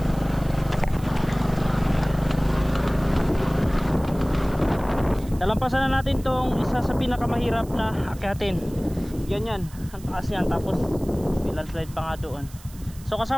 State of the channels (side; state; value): right; noise; hiss, 22 dB below the sound